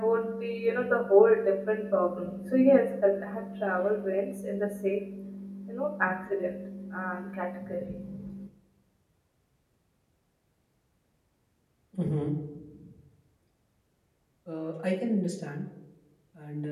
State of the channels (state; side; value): identical; both; correlation 1.00